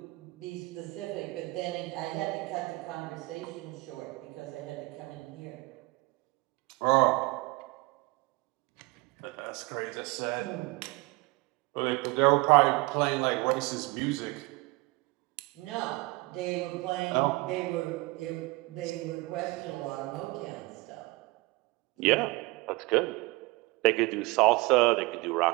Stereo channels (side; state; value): left; quieter; 23.4 dB